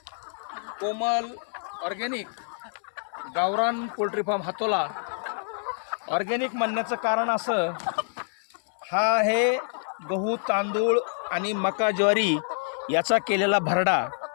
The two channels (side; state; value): right; silent; 60 dB below the other